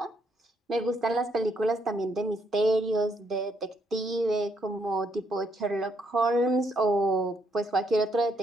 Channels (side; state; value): both; normal; correlation 0.73